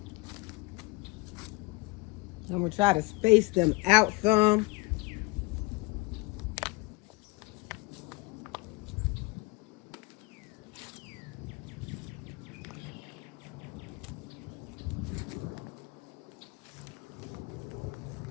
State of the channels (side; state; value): right; quieter; 23.7 dB